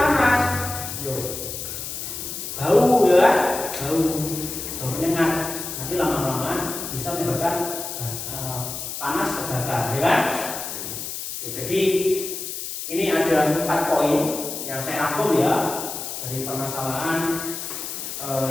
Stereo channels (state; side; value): noise; left; hiss, 6 dB below the sound